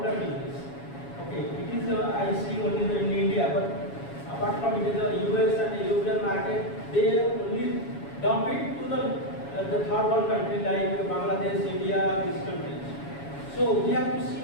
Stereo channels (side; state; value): right; late; 7.1 ms